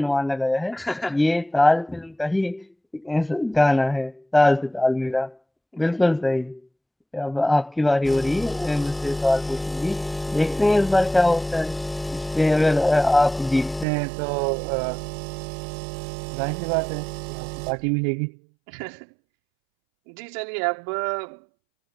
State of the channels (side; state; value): left; drops out; at 13.9 s